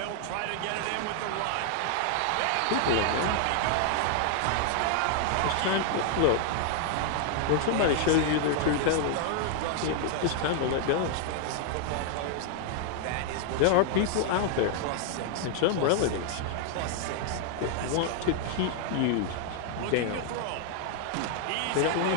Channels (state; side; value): different; both; correlation 0.00